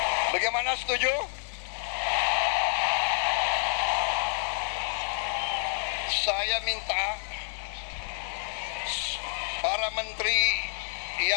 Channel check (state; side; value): silent; right; 59 dB below the other